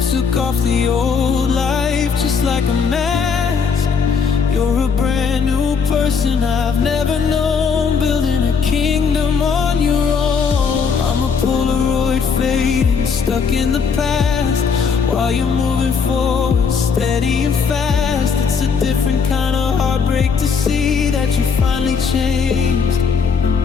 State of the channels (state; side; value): quieter; right; 5.9 dB